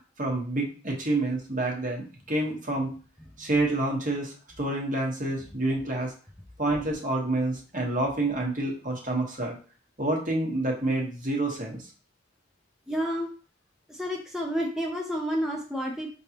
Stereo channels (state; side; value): normal; both; correlation 0.62